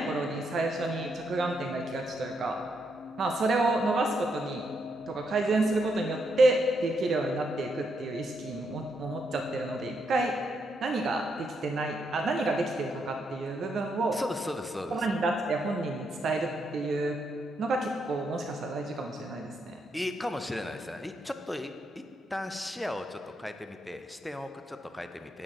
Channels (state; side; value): normal; both; correlation 0.79